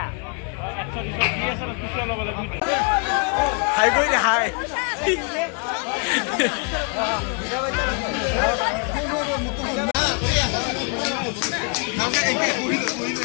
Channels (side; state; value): right; quieter; 37.0 dB